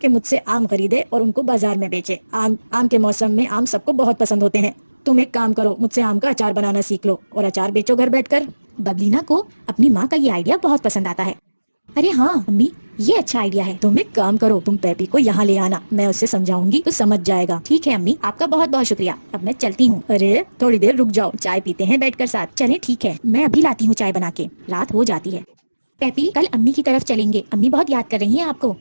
कि मुझसे आम खरीदे और उनको बाजार में बेचे। आम के मौसम में आम सबको बहुत पसंद होते हैं। तुम एक काम करो, मुझसे आम का अचार बनाना सीख लो और अचार बेचो घर बैठकर। बबलीना को अपनी माँ का ये आइडिया बहुत पसंद आता है। अरे हाँ अम्मी, ये अच्छा आइडिया है। तुम एक काम करो, तुम पैपी को यहाँ ले आना, मैं उससे समझाऊंगी तो समझ जाएगा। ठीक है अम्मी, आपका बहुत बहुत शुक्रिया, अब मैं चलती हूँ। अरे थोड़ी देर रुक जाओ, चाय पीते हैं बैठकर साथ। चले ठीक है, मैं अभी लाती हूँ चाय बना के। रात हो जाती है। पैपी कल अम्मी की तरफ चलेंगे, अम्मी बहुत याद कर रही हैं आपको।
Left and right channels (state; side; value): inverted; both; correlation -1.00